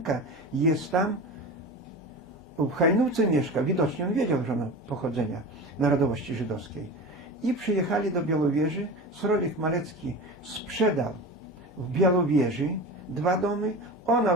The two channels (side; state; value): left; noise; hum, 25 dB below the sound